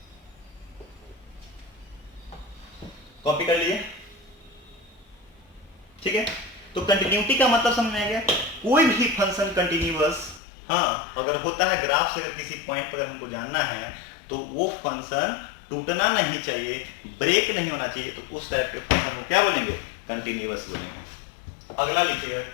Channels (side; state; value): right; drops out; at 10.4 s